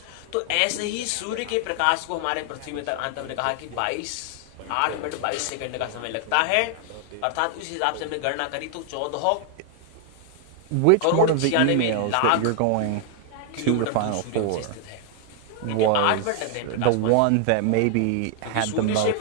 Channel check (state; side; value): different; both; correlation 0.00